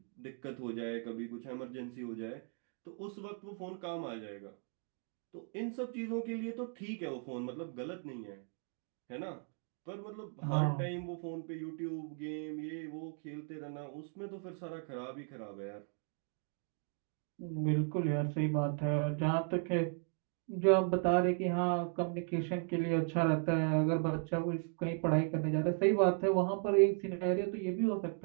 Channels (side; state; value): left; quieter; 40.0 dB